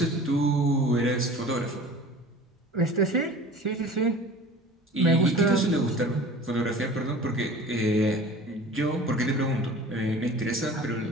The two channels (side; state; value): both; normal; correlation 0.41